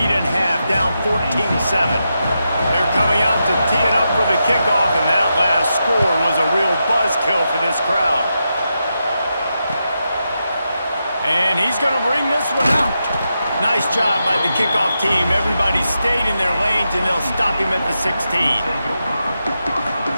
in half, down 14-7. They're coming out to tee it up for the kickoff, and that last score was a real buzzkill for this crowd. And he's going to bring this one out. Nice job by the kickoff team. Everybody stayed in their lanes, and they'll stop him at the 16.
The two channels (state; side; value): inverted; both; correlation -0.87